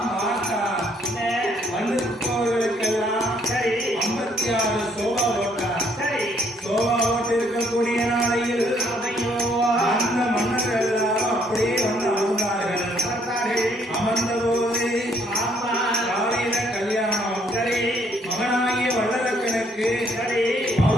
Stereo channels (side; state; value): both; normal; correlation 0.67